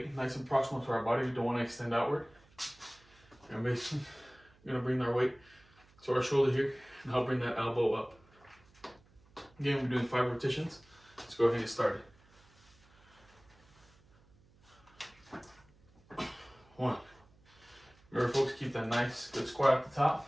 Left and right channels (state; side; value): noise; right; hum, 29 dB below the sound